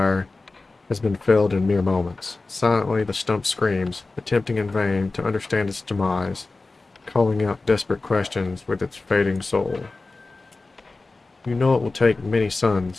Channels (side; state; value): right; quieter; 3.5 dB